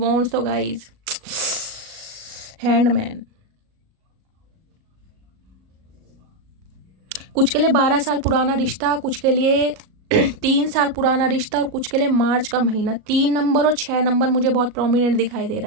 तो गाइस हैंडमैन, कुछ के लिए 12 साल पुराना रिश्ता, कुछ के लिए 3 साल पुराना रिश्ता, और कुछ के लिए मार्च का महीना। 3 नंबर और 6 नंबर मुझे बहुत प्रोमिनेंट दिखाई दे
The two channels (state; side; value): late; left; 37 ms